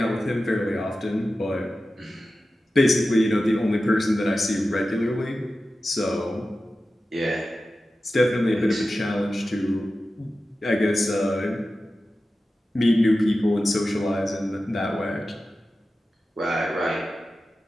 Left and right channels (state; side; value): normal; both; correlation 0.94